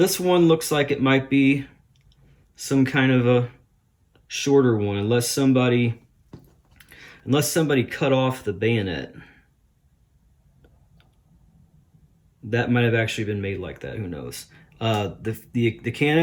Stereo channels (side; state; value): both; identical; correlation 1.00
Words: one looks like it might be some kind of a shorter one, unless somebody cut off the bayonet. That might have actually been made like that, who knows. The